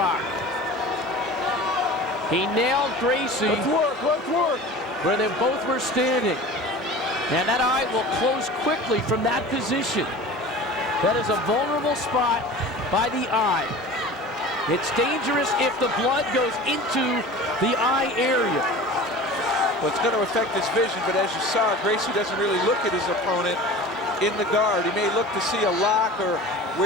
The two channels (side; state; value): both; normal; correlation 0.37